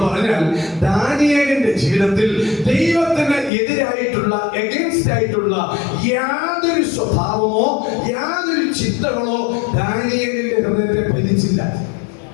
പറഞ്ഞാൽ ദാനിയേലിന്റെ ജീവിതത്തിൽ ദൈവത്തിന് എതിരായിട്ടുള്ള, എഗൻസ്റ്റ് ആയിട്ടുള്ള യാതൊരു സ്വഭാവമോ യാതൊരു ചിന്തകളോ ദാനിയേലിന്റെ ഹൃദയത്തെ ഭരിച്ചില്ല.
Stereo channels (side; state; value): right; drops out; at 3.5 s